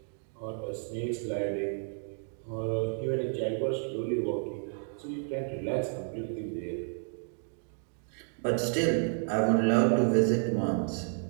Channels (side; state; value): left; silent; 57 dB below the other